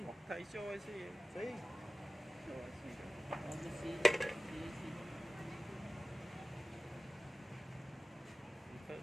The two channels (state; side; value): normal; both; correlation 0.96